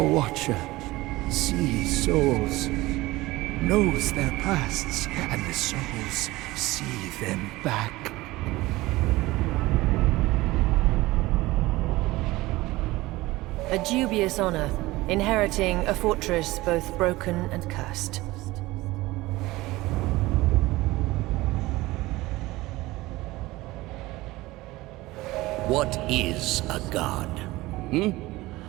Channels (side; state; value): left; quieter; 19.3 dB